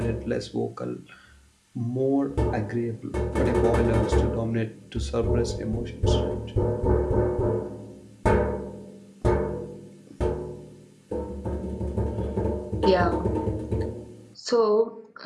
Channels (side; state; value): both; identical; correlation 1.00